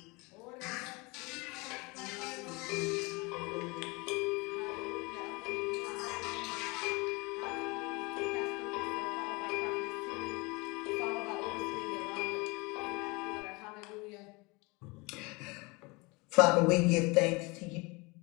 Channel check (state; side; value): quieter; right; 26.4 dB